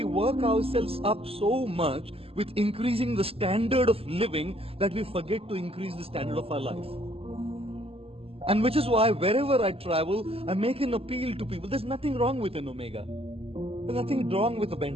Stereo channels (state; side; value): late; left; 0.28 ms